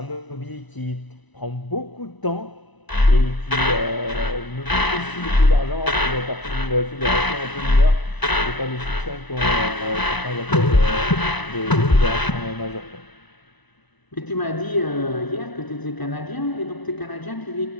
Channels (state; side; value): late; right; 1.0 ms